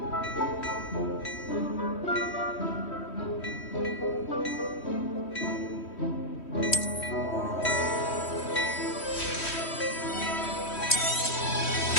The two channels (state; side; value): late; right; 3.1 ms